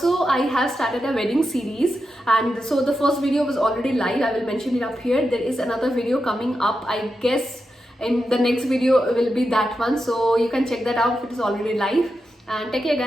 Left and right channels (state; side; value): normal; both; correlation 0.88